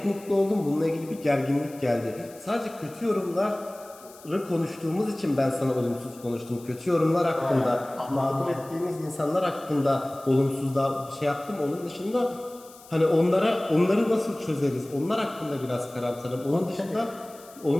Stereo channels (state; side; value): noise; left; hiss, 22 dB below the sound